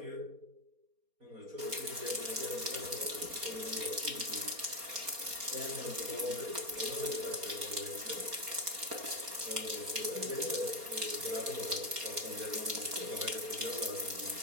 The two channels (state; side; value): late; left; 4.2 ms